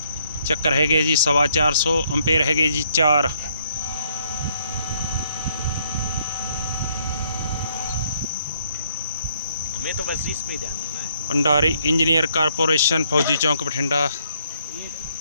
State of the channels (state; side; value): inverted; both; correlation -0.70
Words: ਚੱਕਰ ਹੈਗੇ ਜੀ 450 ਐਂਪੀਅਰ ਹੈਗੇ ਜੀ 4। हमें तो बस इस पे ध्यान देना है। भंडारी इंजीनियर कारपोरेशन फौजी चौक बठिंडा।